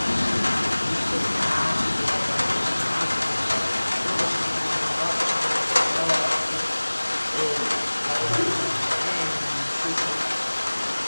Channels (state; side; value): inverted; both; correlation -1.00